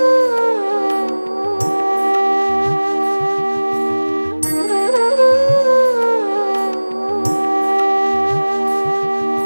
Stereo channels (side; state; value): both; inverted; correlation -1.00